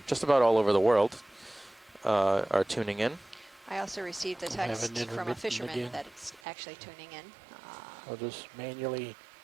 just about all over the world are tuning in. I also received a text from a fisherman that is actually tuning in. I'll just manually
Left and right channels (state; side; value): drops out; left; at 6.4 s